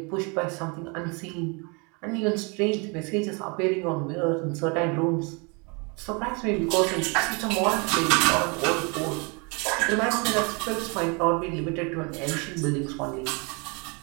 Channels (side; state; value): left; quieter; 31.3 dB